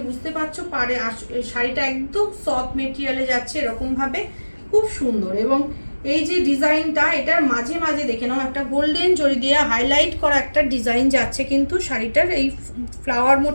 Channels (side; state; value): both; inverted; correlation -1.00